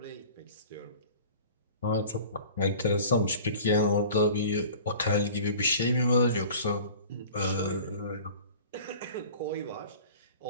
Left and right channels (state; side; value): inverted; both; correlation -0.43